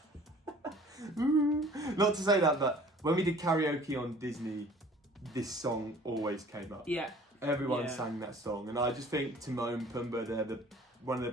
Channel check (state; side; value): normal; both; correlation 0.50